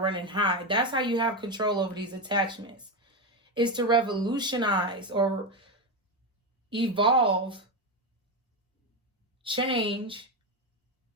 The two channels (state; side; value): normal; both; correlation 0.12